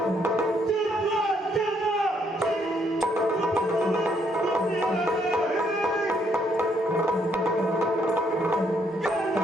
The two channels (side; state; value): both; normal; correlation 0.71